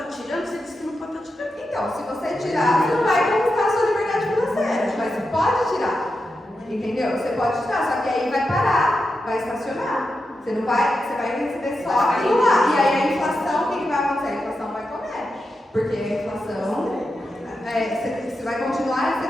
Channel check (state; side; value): normal; both; correlation 0.88